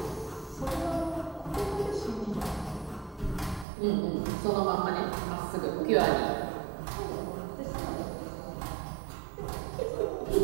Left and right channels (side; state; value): left; drops out; at 3.7 s